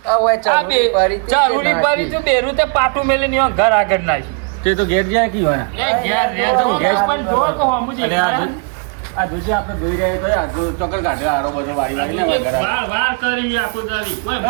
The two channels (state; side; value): quieter; left; 38.2 dB